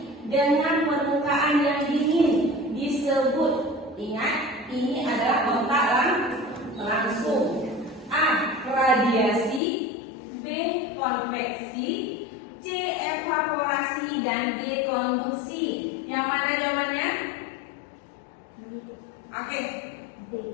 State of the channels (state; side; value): drops out; right; at 9.6 s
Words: dengan permukaan yang dingin disebut, ingat, ini adalah kontak langsung. A. Radiasi. B. Konveksi. C. Evaporasi. Dan D. Konduksi. Yang mana jawabannya? Oke.